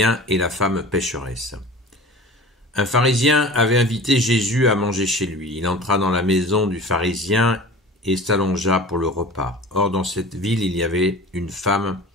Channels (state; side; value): normal; both; correlation 0.38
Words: et la femme pécheresse. Un pharisien avait invité Jésus à manger chez lui. Il entra dans la maison du pharisien et s'allongea pour le repas. Or, dans cette ville, il y avait une femme